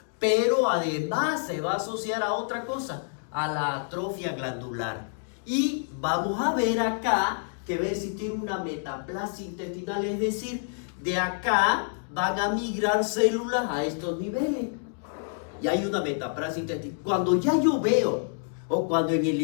pero además se va a asociar a otra cosa, a la atrofia glandular. Y vamos a ver acá que va a existir una metaplasia intestinal, es decir, de acá van a migrar células a estos niveles. Y hay una metaplasia intestinal. Cuando ya yo veo, o cuando en el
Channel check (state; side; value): silent; right; digital silence